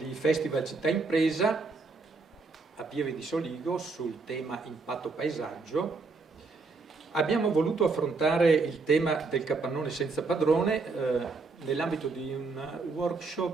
Festival Città Impresa a Pieve di Soligo sul tema impatto paesaggio, abbiamo voluto affrontare il tema del capannone senza padrone nell'ambito di un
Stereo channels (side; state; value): left; quieter; 4.1 dB